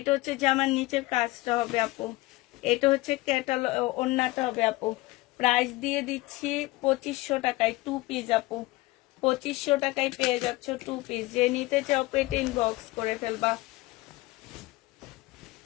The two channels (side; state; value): right; quieter; 20.5 dB